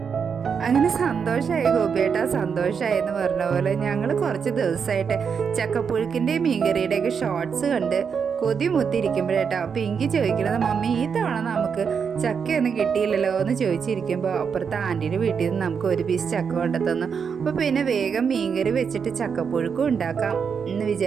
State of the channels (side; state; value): left; quieter; 6.4 dB